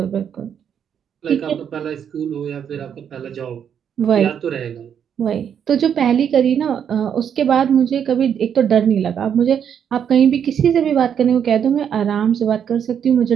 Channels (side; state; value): left; quieter; 8.3 dB